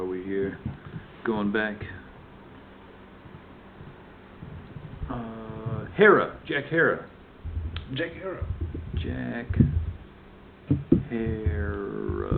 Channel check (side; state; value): both; identical; correlation 1.00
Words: we here? Going back. Hera. Jack Hera. Jack Hera. Jack